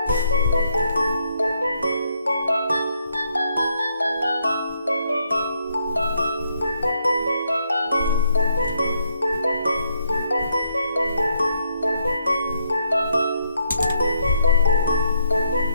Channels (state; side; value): inverted; both; correlation -0.75